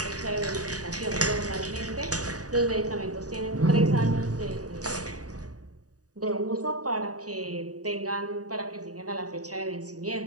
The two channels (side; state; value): left; late; 0.67 ms